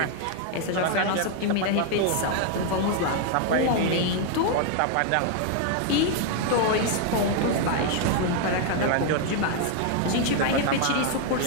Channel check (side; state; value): both; different; correlation 0.00